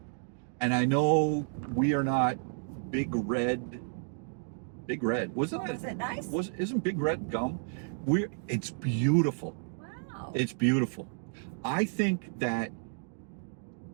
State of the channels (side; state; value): left; silent; digital silence